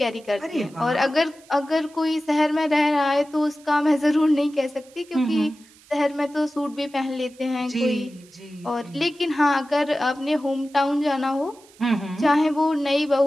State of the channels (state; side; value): noise; right; hiss, 26 dB below the sound